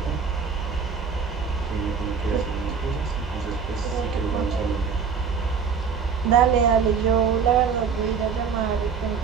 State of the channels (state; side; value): quieter; left; 6.2 dB